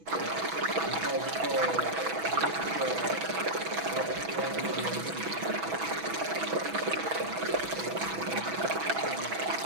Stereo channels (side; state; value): left; late; 6.1 ms